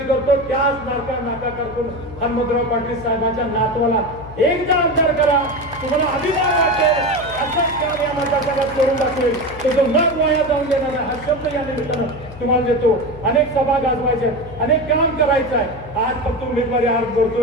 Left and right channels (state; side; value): noise; left; hum, 16 dB below the sound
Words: करतो, त्याच नाका कारकुन हनुमंतराव पाटील साहेबांच्या नातवाला एकदा आमदार करा. तुम्हाला अभिमान वाटेल. असंच काम या मतदारसंघात करून दाखवेल. तो जो न वाया जाऊन देणार आहे हा शब्द या निमित्तानं तुम्हाला देतो. अनेक सभा गाजवायच्या, अनेक काम करायचं आहे. आज फक्त उमेदवारी अर्ज